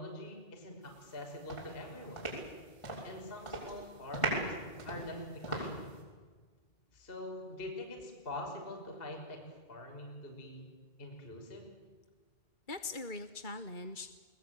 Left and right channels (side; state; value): right; late; 2.3 ms